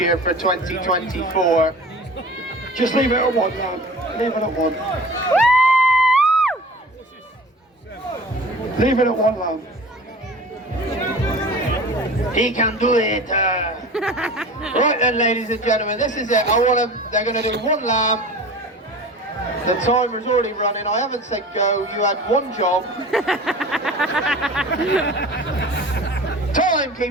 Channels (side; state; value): both; normal; correlation 0.39